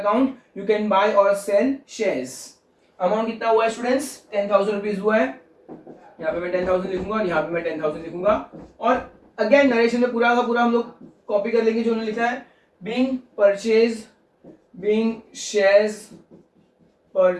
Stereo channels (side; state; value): both; identical; correlation 1.00